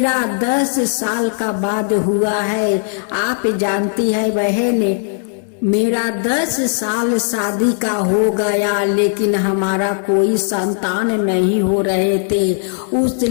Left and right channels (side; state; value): right; silent; 59 dB below the other